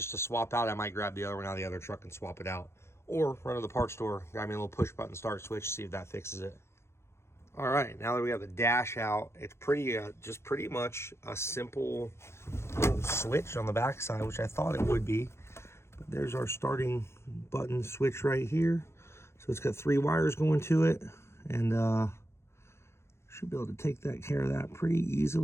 to swap out, I might grab the other one out of the other truck and swap it out. Or run to the parts store, grab me a little push button start switch, see if that fixes it. All right, now that we have the dash out, it's just pretty much a simple little switch on the backside, which I thought it would be. But there's our starting button switch right here. So it's got 3 wires going to it, and should be able to take that care of that pretty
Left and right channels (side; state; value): right; late; 0.13 ms